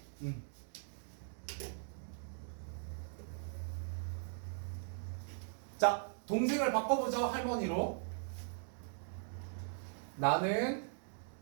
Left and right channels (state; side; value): silent; left; digital silence